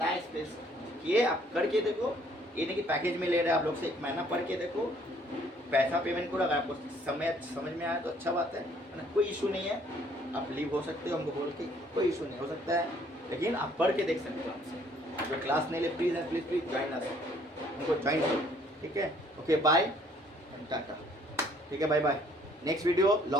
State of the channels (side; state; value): both; normal; correlation 0.62